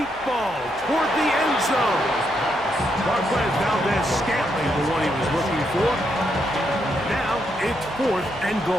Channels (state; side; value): noise; left; hum, 23 dB below the sound